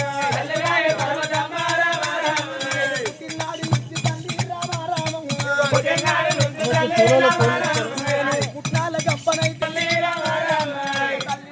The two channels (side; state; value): both; identical; correlation 1.00